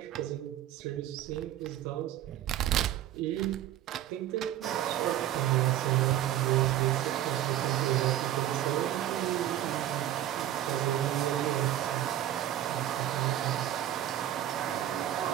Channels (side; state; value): left; quieter; 12.3 dB